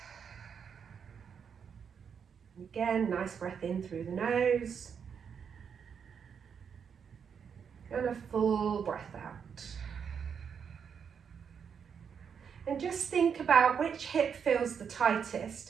Again, nice breath in through the nose and a full breath out. And just think about which hip feels the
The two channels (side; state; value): left; quieter; 7.0 dB